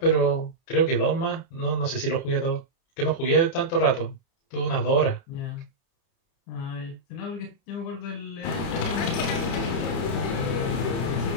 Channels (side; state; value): right; late; 30 ms